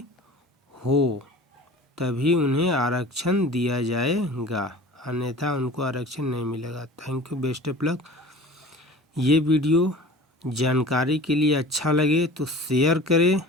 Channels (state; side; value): normal; both; correlation 0.41